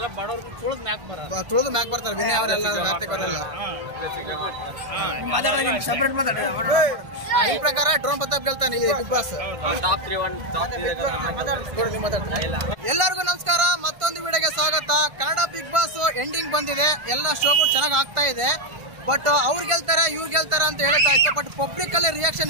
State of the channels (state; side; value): late; left; 1.5 ms